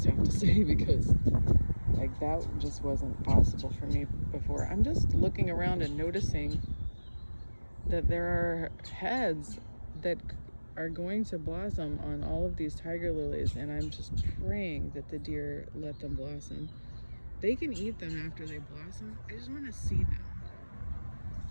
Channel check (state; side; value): inverted; both; correlation -1.00